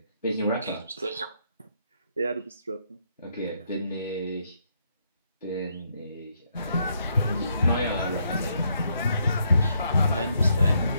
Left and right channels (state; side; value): inverted; both; correlation -0.74